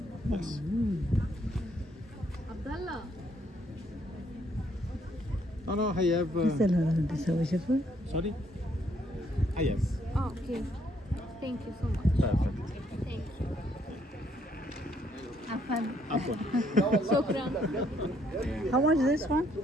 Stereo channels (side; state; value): both; normal; correlation 0.69